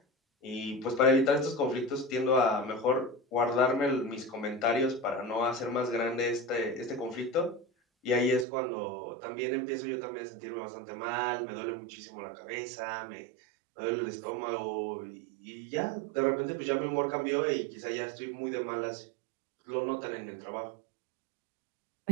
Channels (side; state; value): left; drops out; at 8.5 s